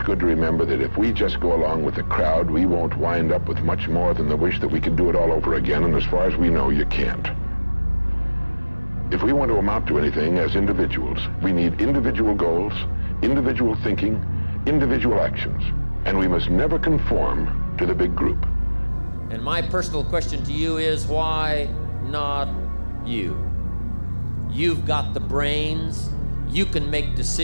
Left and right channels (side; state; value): both; inverted; correlation -1.00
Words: good to remember that if we just go along with the crowd, we won't wind up with much more than the wish that we could do it all over again, and as far as we know, you can't. If we want to amount to anything as individuals, we need individual goals, individual thinking, individual actions, and we must never conform to the big group. And my personal question to you is, why not you? You've got the brains, you can make